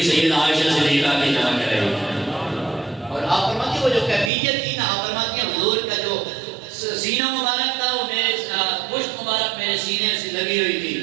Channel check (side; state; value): left; drops out; at 4.3 s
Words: سیدہ عائشہ صدیقہ کی چمک رہی ہے۔ اور آپ فرماتی وہ جو کیفیت تھی نا، آپ فرماتی ہیں حضور کا جو سینہ مبارک تھا وہ میرے پشت مبارک میرے سینے سے لگی ہوئی